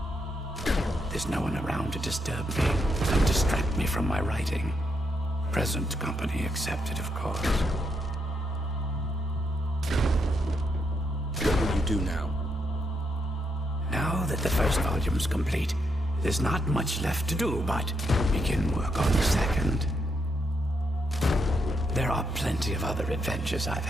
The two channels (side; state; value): both; normal; correlation 0.80